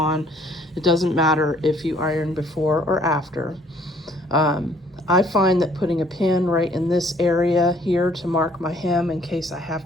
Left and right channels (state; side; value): normal; both; correlation 0.60